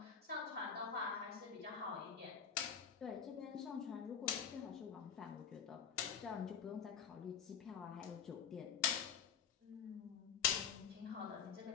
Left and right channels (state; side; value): quieter; right; 7.3 dB